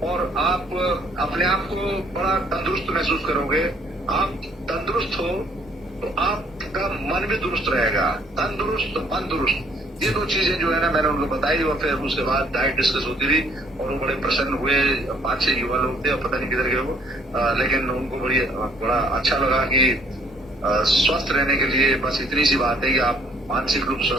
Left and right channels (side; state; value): both; normal; correlation 0.63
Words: और आप अपने आप को बड़ा तंदुरुस्त महसूस करोगे। आप तंदुरुस्त हो तो आपका मन भी दुरुस्त रहेगा। तंदुरुस्त, मन दुरुस्त, ये दो चीजें जो है ना मैंने उनको बताई, और फिर उसके बाद डाइट डिस्कस होती रही और वो बड़े प्रसन्न हुए। 5-6 युवा लोग थे, और पता नहीं किधर गए वो, लेकिन उनको बड़ा अच्छा लगा कि स्वस्थ रहने के लिए बस इतनी सी बात है कि आप मानसिक रूप से